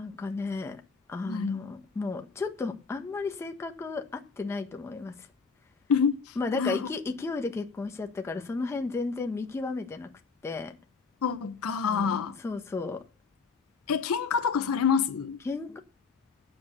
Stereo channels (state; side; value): quieter; right; 5.0 dB